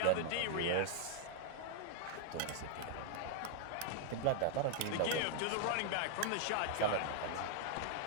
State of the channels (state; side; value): different; both; correlation 0.00